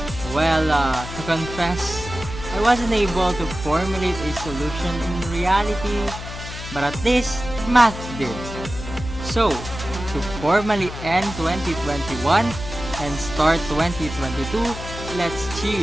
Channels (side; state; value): left; noise; hum, 10 dB below the sound